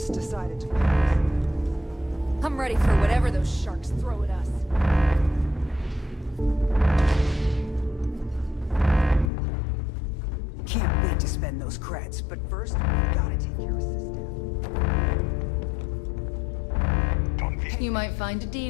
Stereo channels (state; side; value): drops out; right; at 9.3 s